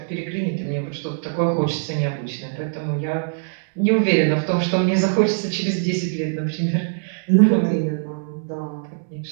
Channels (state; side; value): silent; left; digital silence